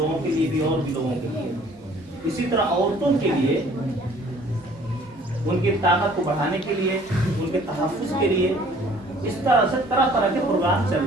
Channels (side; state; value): both; normal; correlation 0.55